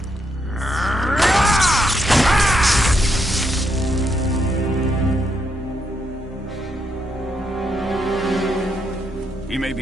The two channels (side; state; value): both; normal; correlation 0.78